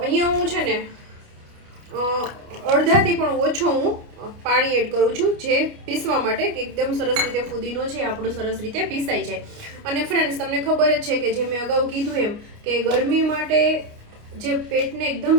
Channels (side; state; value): left; late; 29 ms